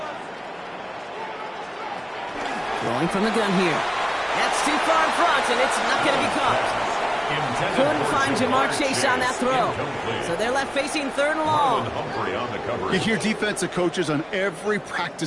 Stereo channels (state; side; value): identical; both; correlation 1.00